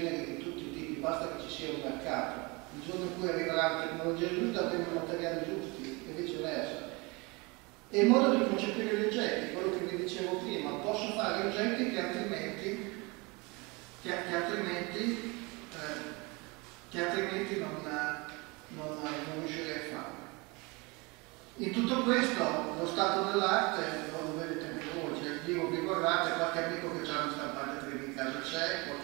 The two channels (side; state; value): left; quieter; 27.0 dB